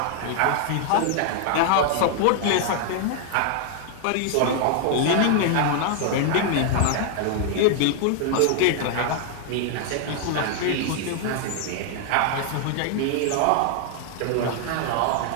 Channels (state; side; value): different; both; correlation 0.00